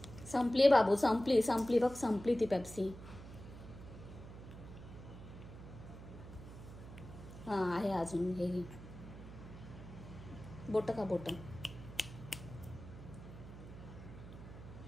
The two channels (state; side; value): noise; right; hum, 14 dB below the sound